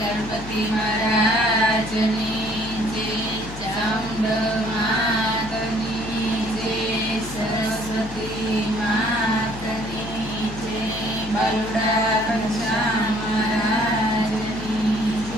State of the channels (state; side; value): noise; left; hum, 13 dB below the sound